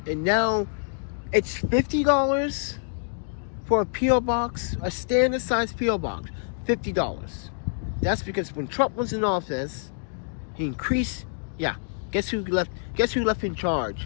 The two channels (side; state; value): right; silent; digital silence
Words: And now It's $50 for a P.O. box, a standard size P.O. box. $50. That's because when Trump was in office, he increased. Yeah, guess who left? Guess who left in